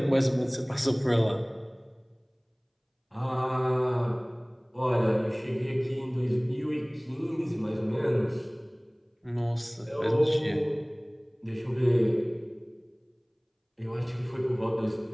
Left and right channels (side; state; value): both; identical; correlation 1.00